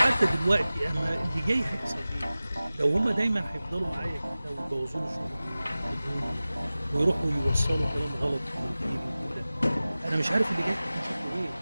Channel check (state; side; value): inverted; both; correlation -0.97